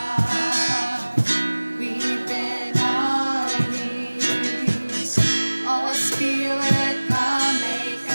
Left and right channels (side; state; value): both; inverted; correlation -1.00